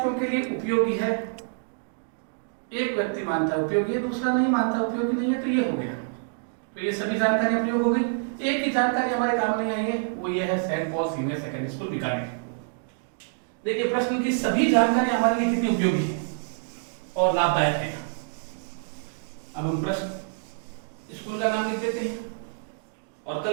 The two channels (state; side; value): silent; left; digital silence